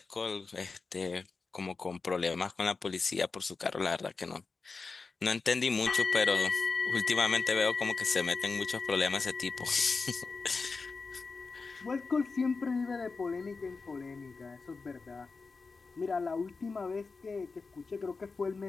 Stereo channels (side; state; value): right; quieter; 4.3 dB